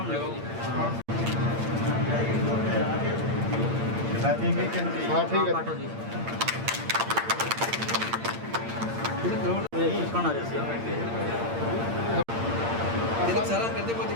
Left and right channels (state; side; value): late; left; 8.7 ms